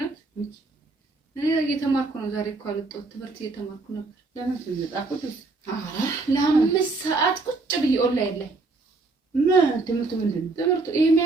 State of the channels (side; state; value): left; quieter; 3.6 dB